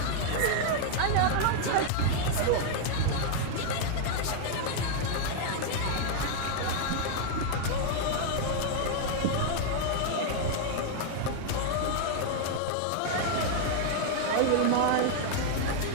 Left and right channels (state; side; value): different; both; correlation 0.00